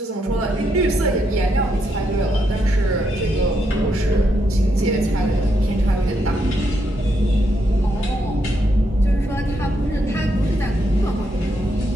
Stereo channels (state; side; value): normal; both; correlation 0.79